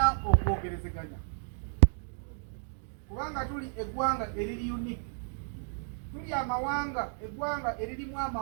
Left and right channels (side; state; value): left; silent; digital silence